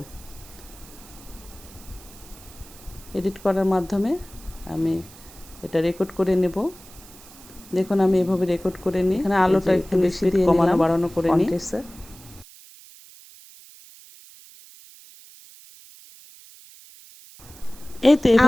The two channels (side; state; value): right; noise; hiss, 21 dB below the sound